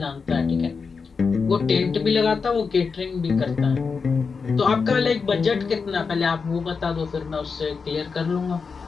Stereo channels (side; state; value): right; quieter; 5.2 dB